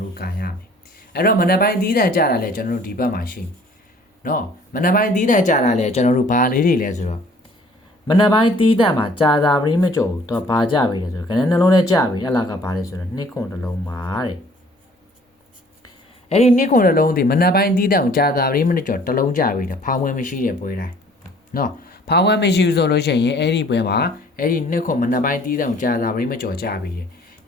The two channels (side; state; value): both; normal; correlation 0.55